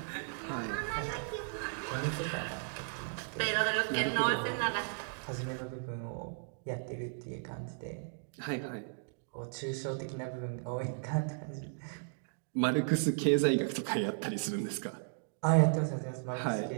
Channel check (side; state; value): left; silent; digital silence